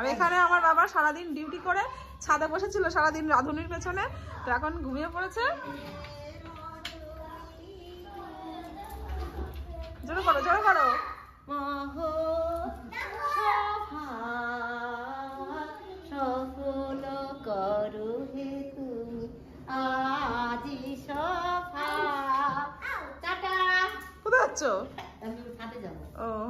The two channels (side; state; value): both; identical; correlation 1.00